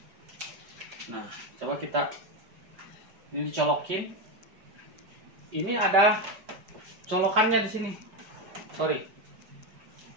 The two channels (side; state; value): left; late; 5.3 ms